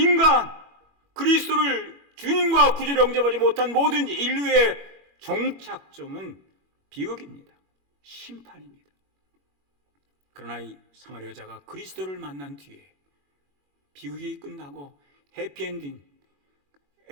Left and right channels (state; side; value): late; left; 21 ms